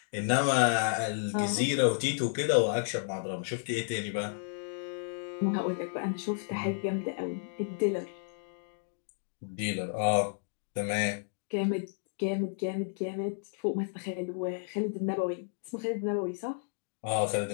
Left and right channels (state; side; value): silent; right; digital silence